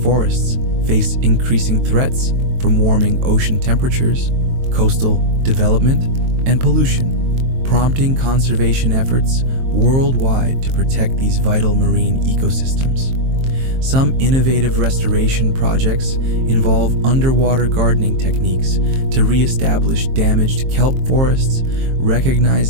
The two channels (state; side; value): late; left; 23 ms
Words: face increasing threats from warming ocean temperatures, coastal development, and pollution, prompting conservation efforts worldwide to protect these vital marine ecosystems. Some innovative restoration projects involve underwater gardening techniques to re-establish damaged kelp forests,